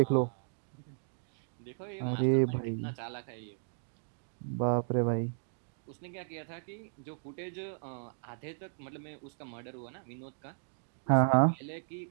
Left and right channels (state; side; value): silent; left; digital silence